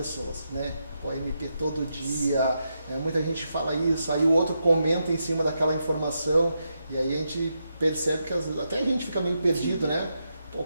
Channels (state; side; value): inverted; both; correlation -0.84